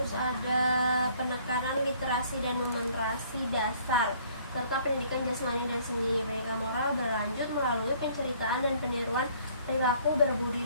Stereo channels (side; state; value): both; inverted; correlation -0.59